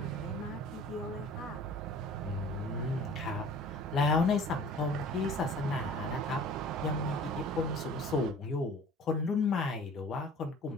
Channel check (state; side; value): normal; both; correlation 0.46